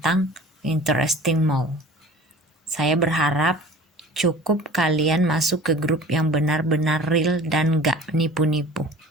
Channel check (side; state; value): both; normal; correlation 0.43